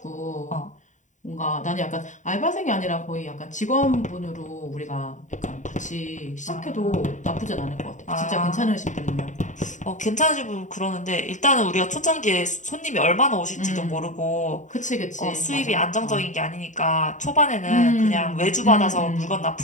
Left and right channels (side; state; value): right; late; 0.36 ms